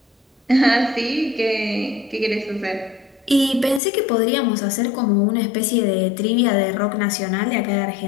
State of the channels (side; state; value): right; drops out; at 3.8 s